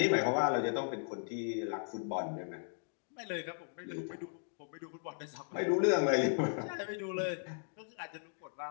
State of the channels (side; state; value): right; silent; digital silence